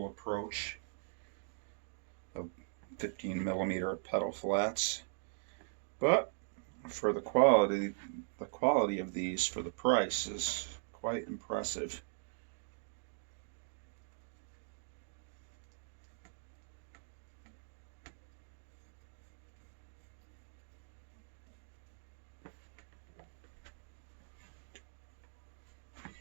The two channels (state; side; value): silent; left; digital silence